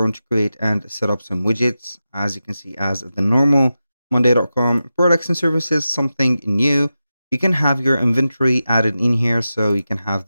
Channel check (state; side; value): inverted; both; correlation -0.92